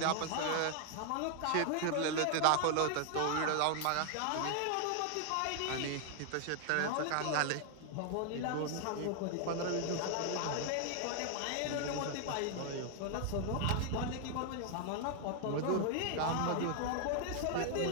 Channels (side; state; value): both; different; correlation 0.00